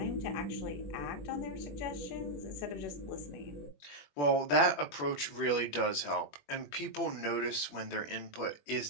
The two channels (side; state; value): right; late; 21 ms